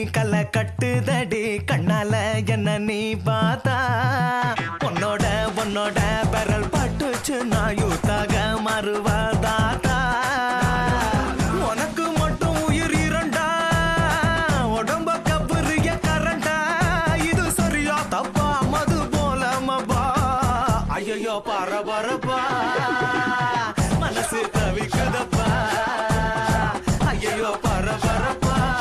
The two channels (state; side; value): identical; both; correlation 1.00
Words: கலை கட்டுதடி கண்ணால என்ன நீ பார்த்தா உன்னோட உன்னோட பெரல் பட்டுச்சு நான் யூத்தாக மறுவதாத்தா உனக்கு மட்டும் உயிர் இரண்டா உடம்ப கபுரிய கரண்டா இது சரியா தப்பா மது போல மபா ஐயோ பரபரப்பா மனசு தவிக்குதப்பா ஐயோ பரபரப்பா